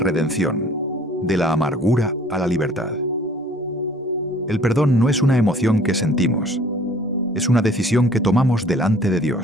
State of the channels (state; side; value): normal; both; correlation 0.53